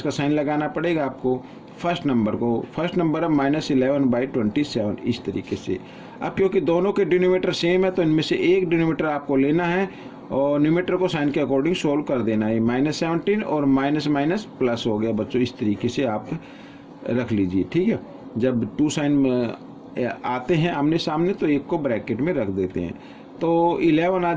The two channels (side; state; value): both; identical; correlation 1.00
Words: का साइन लगाना पड़ेगा आपको फर्स्ट नंबर को। फर्स्ट नंबर है -11/27 इस तरीके से। अब क्योंकि दोनों के डिनोमिनेटर सेम है तो इनमें से एक डिनोमिनेटर आपको लेना है और न्यूमरेटर को साइन के अकॉर्डिंग सोल्व कर देना है। -17 और माइनस माइनस प्लस हो गया बच्चों, इस तरीके से आप रख लीजिए। ठीक है, जब 2 साइन आते हैं आमने सामने तो एक को ब्रैकेट में रख देते हैं, तो 11 आ